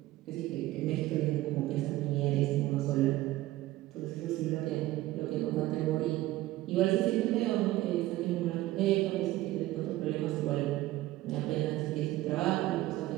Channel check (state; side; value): quieter; left; 16.6 dB